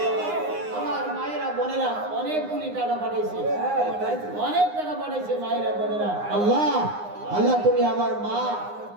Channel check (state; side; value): late; left; 9.7 ms